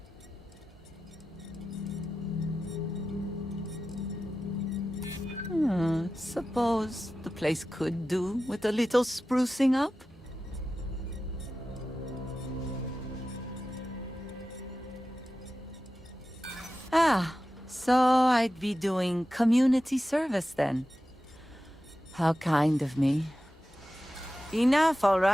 Suppose the place could do with a little sprucing up? Ah, so I'd be doing community service then. How kind of me. Enough, all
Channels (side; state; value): both; normal; correlation 0.93